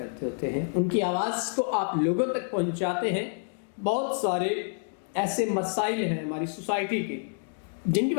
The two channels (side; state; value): right; silent; digital silence